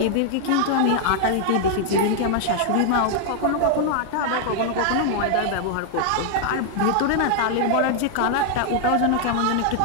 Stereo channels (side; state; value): both; different; correlation 0.00